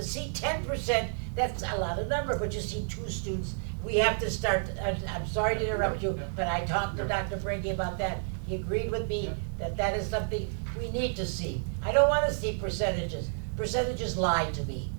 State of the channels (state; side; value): silent; left; digital silence